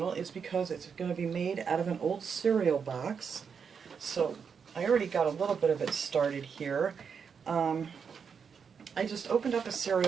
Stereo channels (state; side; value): quieter; left; 6.4 dB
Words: is because it's going to be made out of an old cereal box. So I already got a little bit of it started here. I just opened up a